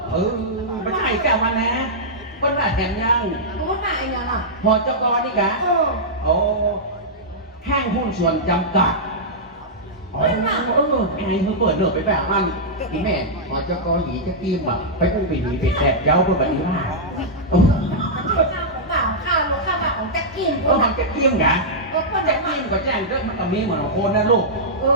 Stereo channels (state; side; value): normal; both; correlation -0.10